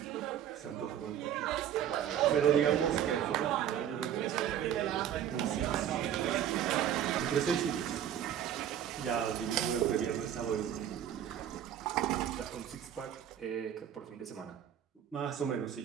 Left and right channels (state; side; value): quieter; left; 10.1 dB